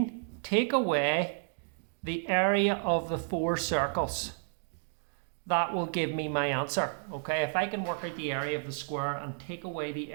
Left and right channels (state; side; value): silent; left; digital silence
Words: take away the area of the 4 circles. That will give me my answer. Okay, if I can work out the area of the square and take away the